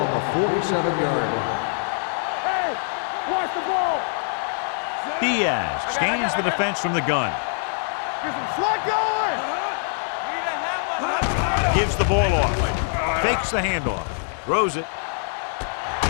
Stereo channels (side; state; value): right; silent; 63 dB below the other